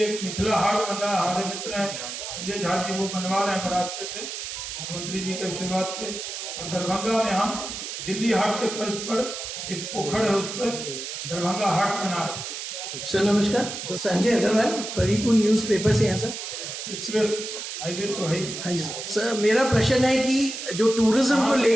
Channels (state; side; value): noise; right; hiss, 7 dB below the sound